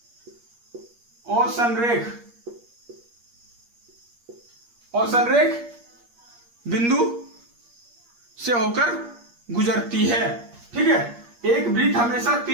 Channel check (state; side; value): late; left; 8.5 ms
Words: असंरेख बिंदु से होकर गुजरती है। ठीक है, एक वृत्त हमेशा